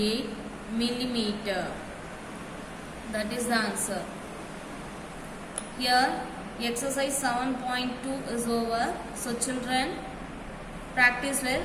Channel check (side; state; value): both; identical; correlation 1.00